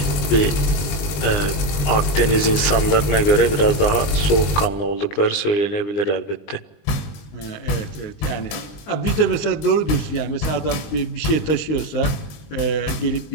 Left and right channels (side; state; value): right; late; 20 ms